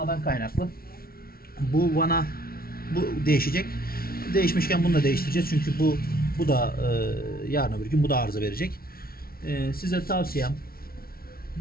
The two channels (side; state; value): right; late; 0.44 ms